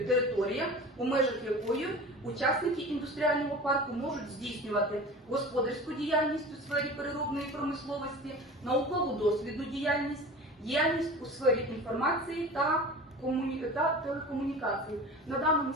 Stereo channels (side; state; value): both; normal; correlation 0.36